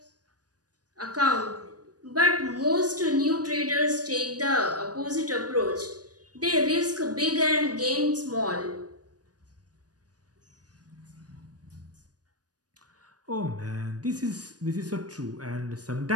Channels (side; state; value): left; late; 0.68 ms